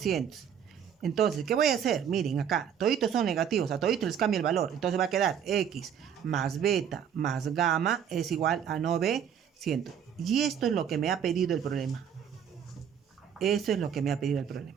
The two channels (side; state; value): left; quieter; 8.4 dB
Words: Entonces, ¿qué voy a hacer? Miren acá, toditos son negativos, a toditos les cambia el valor. Entonces va a quedar x más beta más gamma es igual a 900. Y esto es lo que me ha pedido el problema. Eso es lo que me ha pedido el